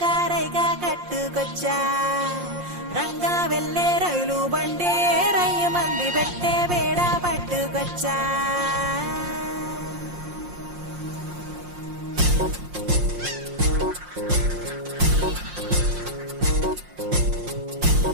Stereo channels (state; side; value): late; left; 5.6 ms